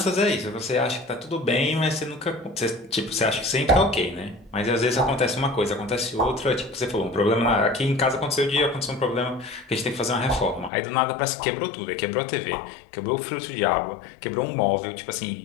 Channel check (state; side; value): drops out; right; at 10.7 s